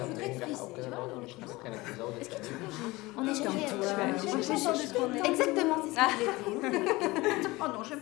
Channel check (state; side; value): quieter; right; 21.3 dB